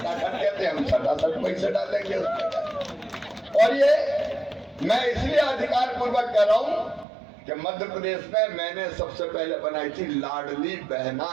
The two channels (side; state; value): left; drops out; at 7.1 s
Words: कहते हैं, हम खटाखट पैसे डालेंगे उसमें। और ये मैं इसलिए अधिकार पूर्वक कह रहा हूं कि मध्य प्रदेश में मैंने सबसे पहले बनाई थी लाडली बहना